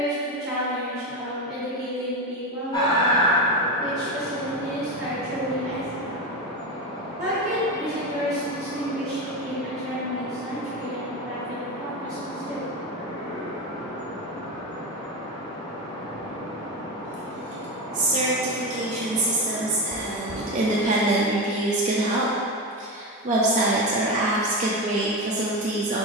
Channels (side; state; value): both; normal; correlation 0.17